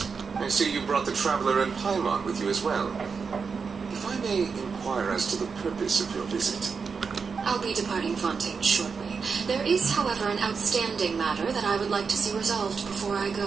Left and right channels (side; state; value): left; quieter; 5.4 dB